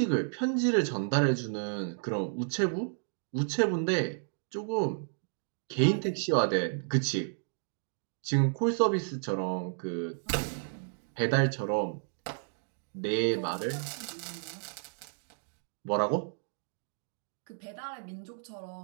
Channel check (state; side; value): silent; left; digital silence